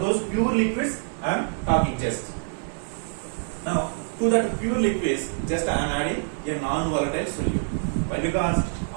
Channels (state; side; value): silent; left; digital silence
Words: those pure liquids I'm talking just. Now, to that pure liquids, just I am adding a non-volatile solute. Why? Because